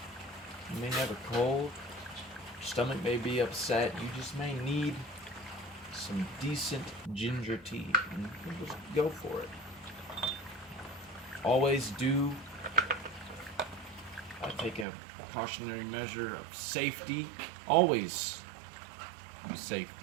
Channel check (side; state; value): left; drops out; at 14.9 s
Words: You may never cold. Your stomach may be upset. You just may need some decent ginger tea, and you just go for it. Always do take a precautionary measure of safety. Always use